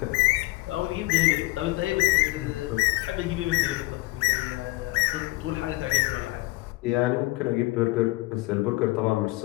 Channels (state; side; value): quieter; right; 21.2 dB